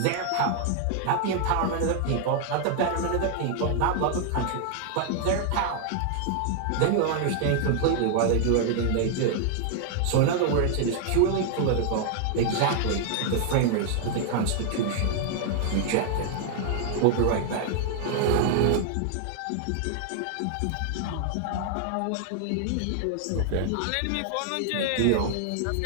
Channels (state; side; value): different; both; correlation 0.00